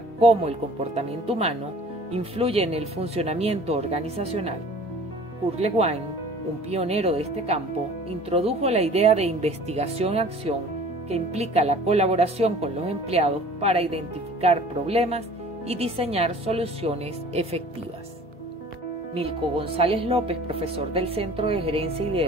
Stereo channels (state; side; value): normal; both; correlation 0.47